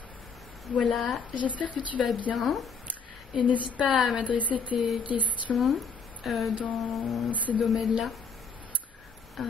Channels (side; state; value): right; quieter; 5.2 dB